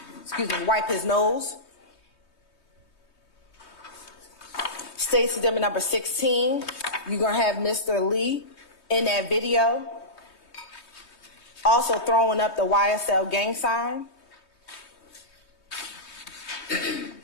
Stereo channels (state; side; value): late; right; 3.2 ms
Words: his nose. State's Exhibit number 16, you're gonna have Mr. Lee in that video, also throwing up the YSL gang sign.